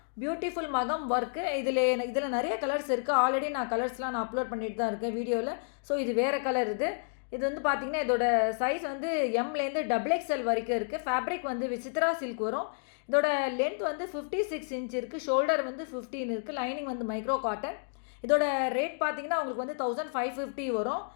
பியூட்டிஃபுல் மகம் ஒர்க்கு. இதில் நிறைய கலர்ஸ் இருக்குது. ஆல்ரெடி நான் கலர்ஸ்லாம் அப்லோட் பண்ணிட்டு தான் இருக்கேன் வீடியோவில். ஸோ இது வேறு கலர். இது வந்து பார்த்திங்கன்னா இதோட சைஸ் வந்து எம்லேருந்து XXL வரைக்கும் இருக்குது. ஃபேப்ரிக் வந்து விசித்ரா சில்க் வரும். இதோட லென்த் வந்து 56 இன்ச் இருக்குது. ஷோல்டர் வந்து 15 இருக்குது. லைனிங் வந்து மைக்ரோ காட்டன். இதோட ரேட் பார்த்திங்கன்னா உங்களுக்கு வந்து 1550 வரும்.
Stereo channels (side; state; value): right; silent; digital silence